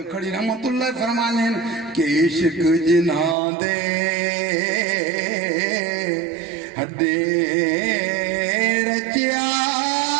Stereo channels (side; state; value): left; drops out; at 3.4 s